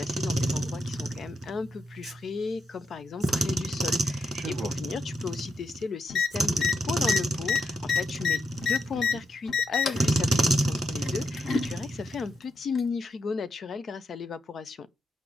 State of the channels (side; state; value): both; normal; correlation 0.82